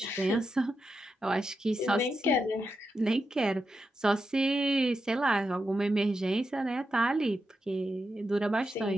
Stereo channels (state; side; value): normal; both; correlation 0.87